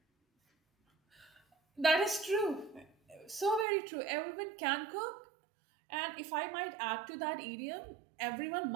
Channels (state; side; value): drops out; left; at 3.7 s